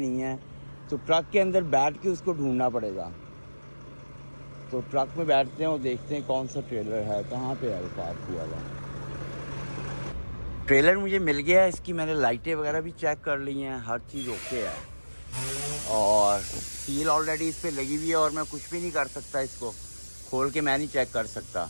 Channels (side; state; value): both; inverted; correlation -1.00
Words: है। तो ट्रक के अंदर बैठ के उसको ढूंढना पड़ेगा। तो ट्रक में बैठते हैं और देखते हैं कौन सा ट्रेलर है, कहाँ पे है वो पार्क हुआ हुआ। ट्रेलर मुझे मिल गया है। इसकी मैंने लाइटें वगैरह भी चेक कर ली हैं, हर चीज़ ओके है। और सील ऑलरेडी इस पर लगी हुई है और मैं कुछ भी नहीं कर सकता, इसको खोल के मैं नहीं चेक कर सकता।